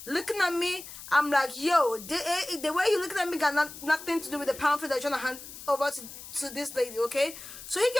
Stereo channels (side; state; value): left; noise; hiss, 14 dB below the sound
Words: looking at me, I'm like, yo, the way he looking at me got nothing to do with the pamphlet that you're trying to hand over to this lady, okay? So he